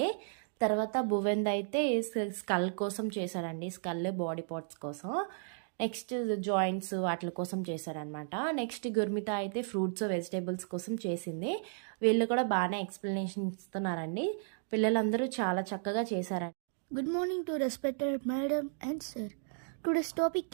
తర్వాత భువెంద్ అయితే స్కల్ కోసం చేశాడండి, స్కల్ బాడీ పార్ట్స్ కోసం. నెక్స్ట్ జాయింట్స్ వాటి కోసం చేశారనమాట. నెక్స్ట్ గుర్మిత అయితే ఫ్రూట్స్ వెజిటేబుల్స్ కోసం చేసింది. వీళ్ళు కూడా బాగానే ఎక్స్ప్లెనేషన్ ఇస్తున్నారండి. పిల్లలందరూ చాలా చక్కగా చేశారండి. Good morning to respected madam and sir. Today's topic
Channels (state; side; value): silent; left; digital silence